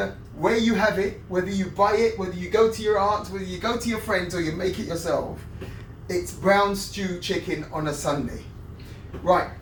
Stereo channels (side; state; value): both; identical; correlation 1.00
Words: where you have it, whether you buy it, whether you go to your aunt's, whether you go to your friends or you make it yourself. It's brown stewed chicken on a Sunday. Right,